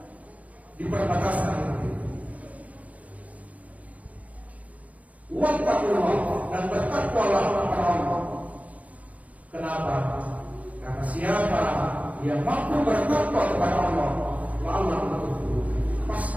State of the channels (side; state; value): left; late; 0.070 ms